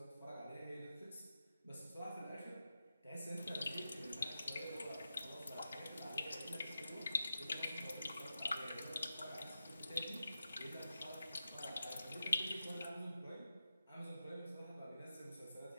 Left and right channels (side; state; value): both; inverted; correlation -0.90